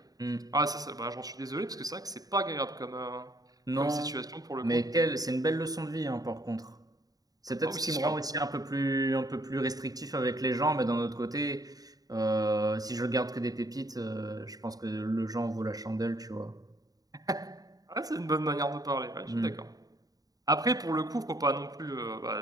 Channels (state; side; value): late; left; 0.18 ms